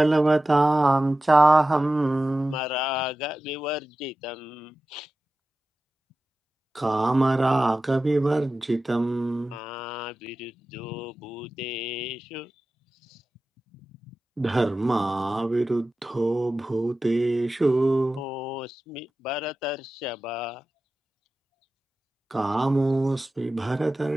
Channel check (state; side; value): normal; both; correlation 0.94